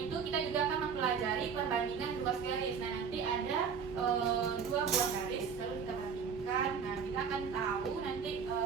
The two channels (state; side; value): quieter; left; 6.4 dB